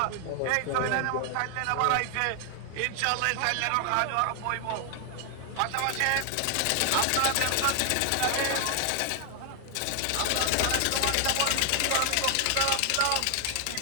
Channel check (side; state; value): both; different; correlation 0.00